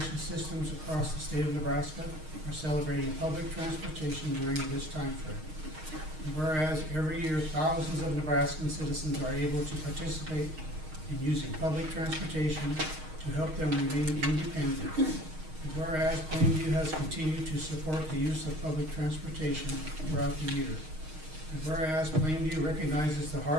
systems across the state of Nebraska are celebrating public transportation during this time frame. And whereas every year thousands of Nebraskan citizens are able to participate in using public transportation to help them remain independent. And whereas Plainview has continued to support the use of public transportation throughout the year. And whereas Plainview recognizes the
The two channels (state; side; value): late; left; 6.4 ms